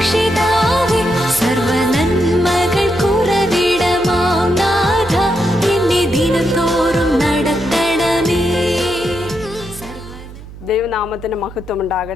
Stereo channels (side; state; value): right; noise; hum, 16 dB below the sound